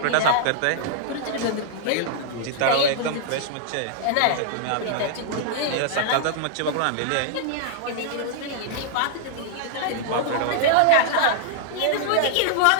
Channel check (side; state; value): both; different; correlation -0.01